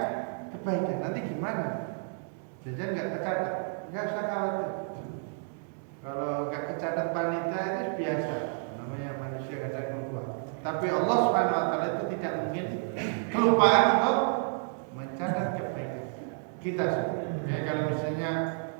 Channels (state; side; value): silent; left; 57 dB below the other